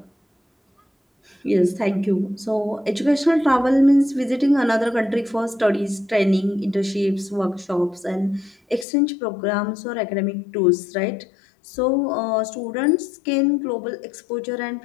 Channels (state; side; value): drops out; right; at 8.8 s